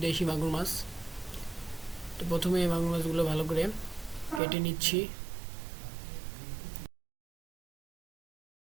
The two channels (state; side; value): drops out; left; at 4.4 s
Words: দেশি মাগুর মাছ। তো প্রথমে এই মাগুর মাছগুলো ভালো করে কেটে নিচ্ছি।